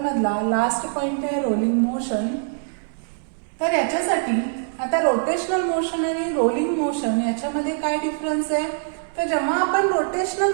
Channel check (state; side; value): silent; left; 63 dB below the other